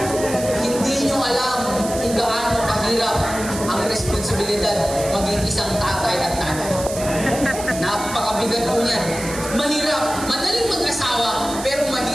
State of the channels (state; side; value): noise; right; hiss, 10 dB below the sound